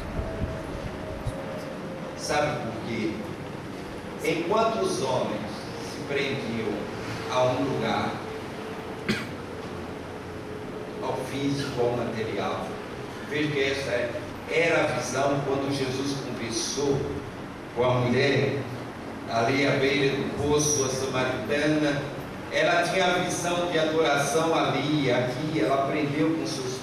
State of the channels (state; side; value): identical; both; correlation 1.00